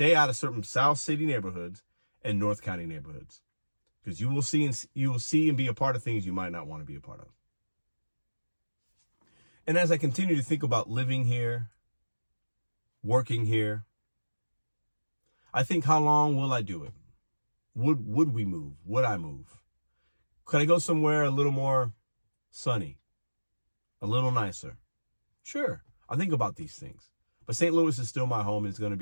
out of certain South City neighborhoods and North County neighborhoods, because you will see and be a part of things you might not want to be a part of. And as I continue to think about living here, working here, I think, how long will I do it? Would we move? Would I move? Could I go somewhere a little more sunny, a little nicer? Sure, I think about these things. But St. Louis is still my home, and it's going to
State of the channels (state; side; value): inverted; both; correlation -1.00